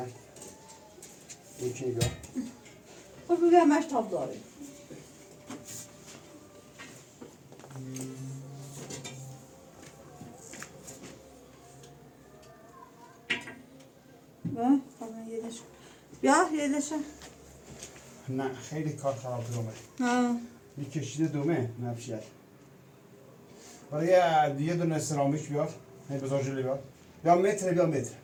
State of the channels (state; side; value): identical; both; correlation 1.00